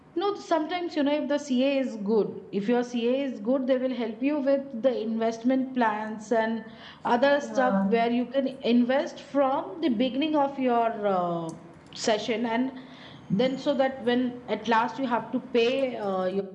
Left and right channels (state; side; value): identical; both; correlation 1.00